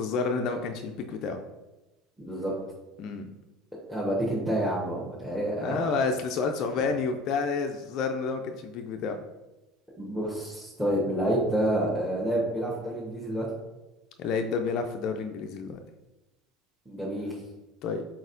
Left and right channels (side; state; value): both; normal; correlation 0.45